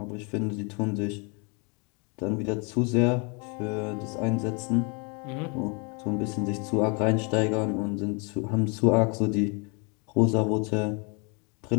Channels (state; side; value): quieter; right; 33.4 dB